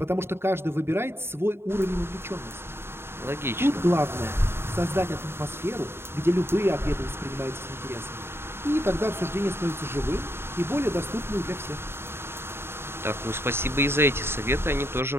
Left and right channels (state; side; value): late; left; 0.11 ms